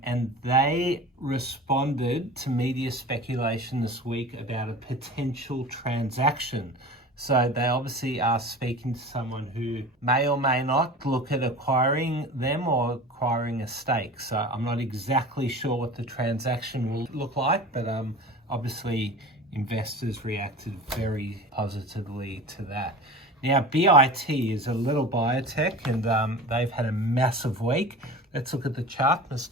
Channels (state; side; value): normal; both; correlation 0.36